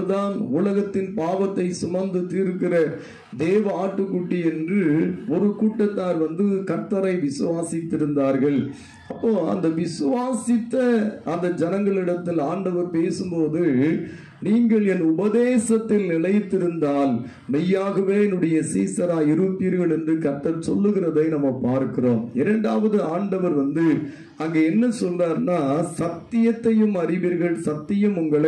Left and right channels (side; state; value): both; identical; correlation 1.00